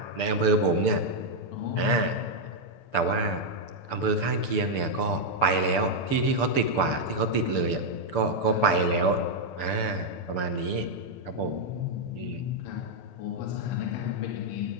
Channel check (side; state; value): right; late; 6.9 ms